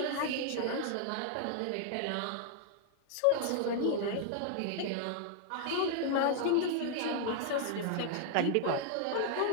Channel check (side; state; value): both; different; correlation 0.00